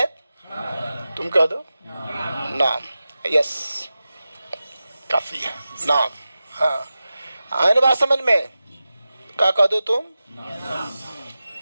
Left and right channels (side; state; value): both; inverted; correlation -0.94